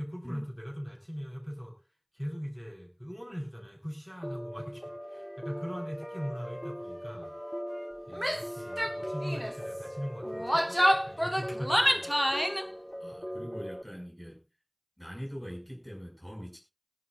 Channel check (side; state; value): both; identical; correlation 1.00